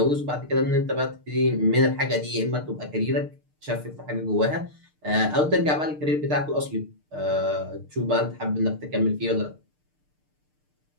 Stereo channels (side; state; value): left; late; 6.6 ms